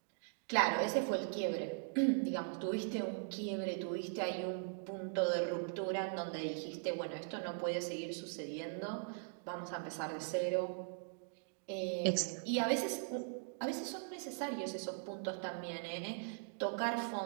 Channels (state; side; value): silent; left; digital silence